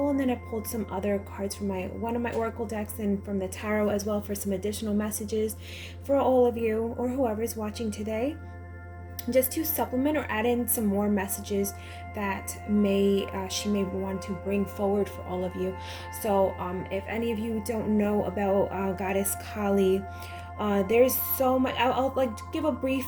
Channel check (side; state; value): both; identical; correlation 1.00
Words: and then I pulled some other cards from one of my Oracle decks and from the Tarot as well for some additional messages for all of you or whoever's watching today, just to supplement or add in some more messages that she may want to bring forward for all of you. So if any of you don't know about Goddess Kali, there's so much. I'll like give a brief